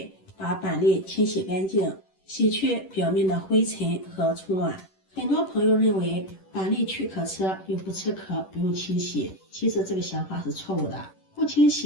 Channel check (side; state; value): right; late; 10 ms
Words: 把板栗清洗干净，洗去表面的灰尘和虫卵。很多朋友认为板栗去壳吃，又不吃壳，不用清洗，其实这个想法是错误的。不清